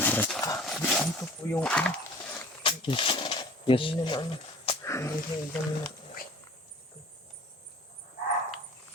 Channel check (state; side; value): normal; both; correlation 0.46